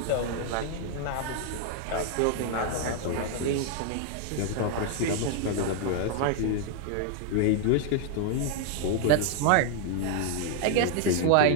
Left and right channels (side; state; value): both; different; correlation 0.00